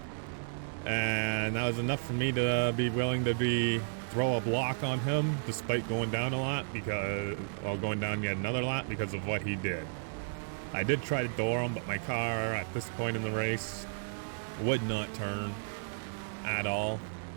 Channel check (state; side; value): silent; left; digital silence